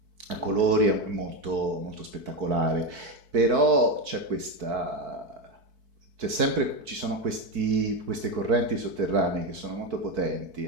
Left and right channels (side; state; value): left; late; 4.6 ms